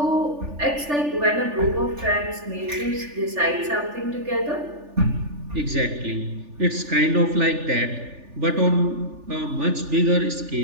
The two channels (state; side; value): late; left; 3.4 ms